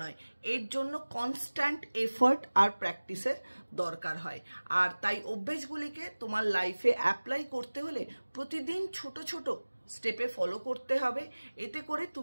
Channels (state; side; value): inverted; both; correlation -1.00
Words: নয়, এর জন্য কনস্ট্যান্ট এফার্ট আর প্র্যাকটিসের দরকার হয়। আর তাই অভ্যেসগুলিকে তোমার লাইফে অ্যাপ্লাই করতে হলে প্রতিদিন ছোট ছোট স্টেপে ফলো করতে হবে, এতে করে